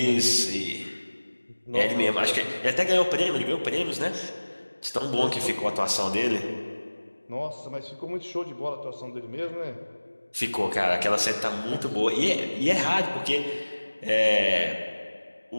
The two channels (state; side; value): inverted; both; correlation -1.00